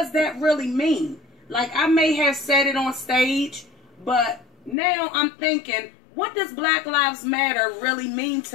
that really mean? Like, I may have said it on stage, but now I'm thinking, what does Black Lives Matter really mean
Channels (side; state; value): right; drops out; at 4.8 s